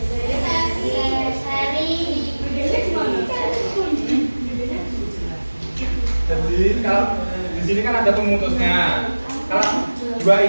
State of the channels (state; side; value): inverted; both; correlation -1.00